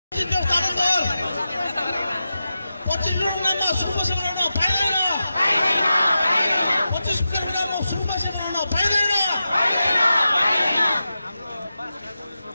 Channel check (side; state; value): both; inverted; correlation -0.91